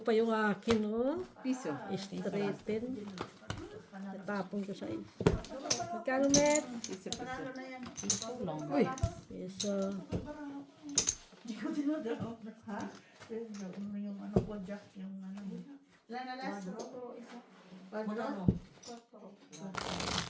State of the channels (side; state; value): both; identical; correlation 1.00